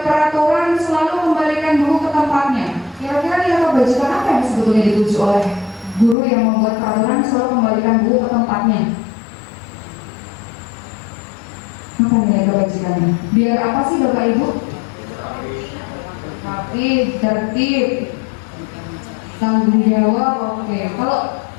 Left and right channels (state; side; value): drops out; right; at 6.2 s